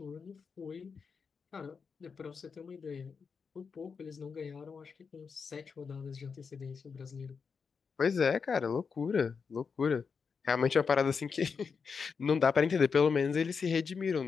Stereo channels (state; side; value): quieter; right; 5.6 dB